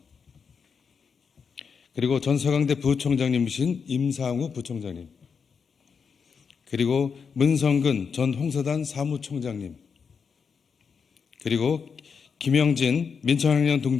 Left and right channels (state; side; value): quieter; right; 6.0 dB